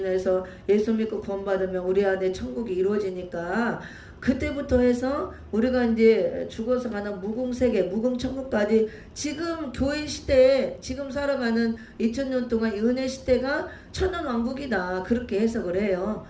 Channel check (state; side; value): identical; both; correlation 1.00